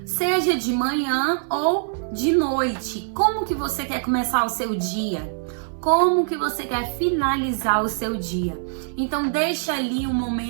Seja de manhã ou de noite. Como que você quer começar o seu dia? Como que você quer finalizar o seu dia? Então deixa ali um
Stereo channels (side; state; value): left; silent; 63 dB below the other